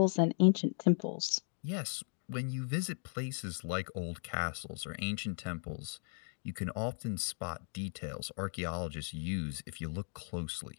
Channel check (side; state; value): right; silent; 53 dB below the other